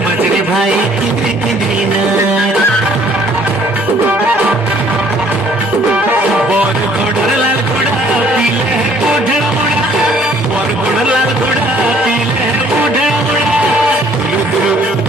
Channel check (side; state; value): both; normal; correlation 0.59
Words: মাঝে ভাই কিনে কিনে না বর ঘোড়ার লাল ঘোড়া পিলে উঠে মোড়া বর ঘোড়ার লাল ঘোড়া পিলে উঠে মোড়া দুলু দুলু